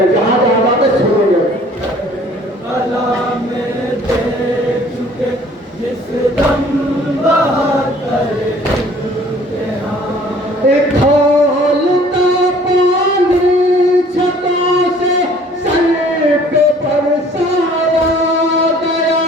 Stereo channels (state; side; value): normal; both; correlation 0.54